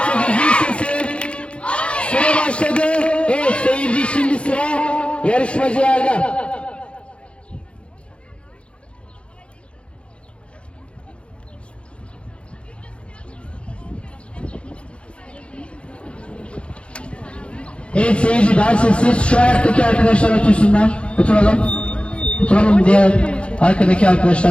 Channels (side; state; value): right; late; 0.059 ms